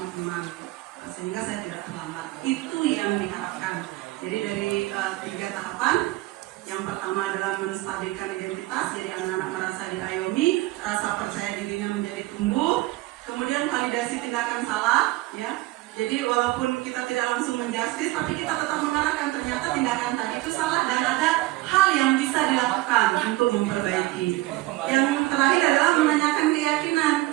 teman sehingga saya tidak terlambat. Itu yang diharapkan. Jadi dari 3 tahapan. Yang pertama adalah menstabilkan identitas, jadi anak-anak merasa diayomi, rasa percaya dirinya menjadi tumbuh. Kemudian validasi tindakan salah, ya. Jadi walaupun kita tidak langsung menjustis, tapi kita tetap mengarahkan ternyata tindakan tadi itu salah dan ada hal yang bisa dilakukan untuk memperbaiki. Yang terakhir adalah menanyakan keyakinan,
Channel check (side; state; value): left; quieter; 19.0 dB